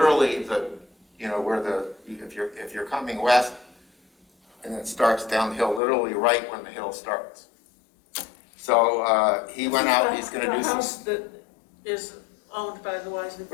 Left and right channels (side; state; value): right; drops out; at 5.8 s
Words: if you're coming west and it starts down the hill, literally right when the hill starts. So he went out, he's going to do some. The house that is owned by the Wisely